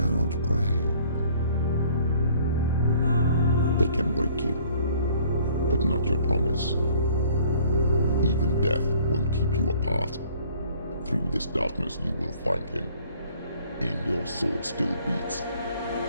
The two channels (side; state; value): both; inverted; correlation -0.56